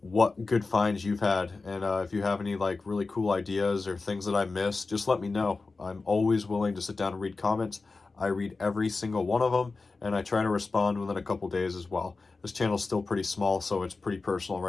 what good finds you've had, and if you have any like really cool ideas or things that I missed, just let me know. I'm always willing to sit down and read comments. I read every single one of them, and I try to respond within a couple days as well. This channel's still pretty small, so it's pretty personal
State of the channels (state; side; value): quieter; right; 3.9 dB